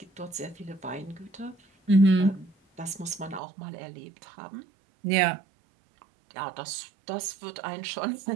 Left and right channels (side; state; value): left; drops out; at 3.4 s